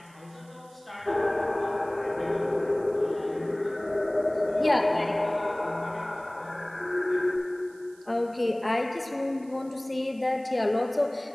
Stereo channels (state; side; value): noise; right; hiss, 28 dB below the sound